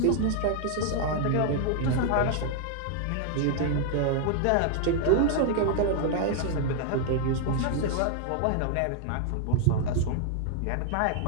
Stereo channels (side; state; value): both; different; correlation 0.00